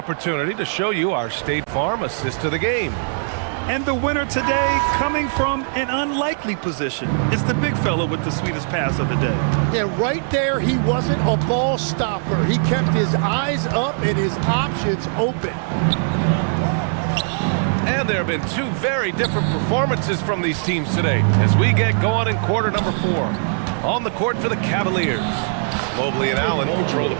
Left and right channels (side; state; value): left; silent; 65 dB below the other